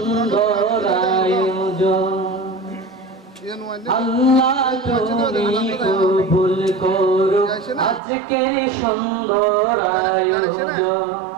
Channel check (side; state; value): left; drops out; at 8.0 s